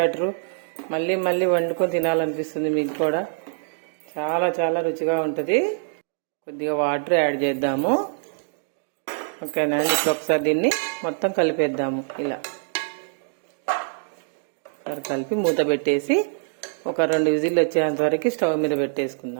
మళ్ళీ మళ్ళీ వండుకొని తినాలనిపిస్తుంది మీకు కూడా. చాలా చాలా రుచిగా ఉంటుంది. కొద్దిగా వాటర్ యాడ్ చేద్దాము. ఓకేనా? ఇప్పుడు ఒకసారి దీన్ని మొత్తం కలిపేద్దాము. ఇలా కలిపి మూత పెట్టేసి ఒక 2 విజిల్లు వచ్చేంత వరకు స్టవ్ మీద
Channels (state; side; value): silent; left; digital silence